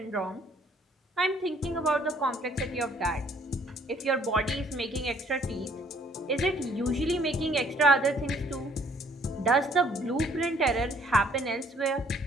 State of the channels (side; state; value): both; normal; correlation 0.62